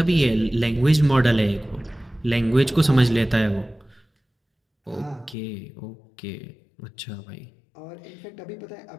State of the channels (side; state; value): right; drops out; at 5.4 s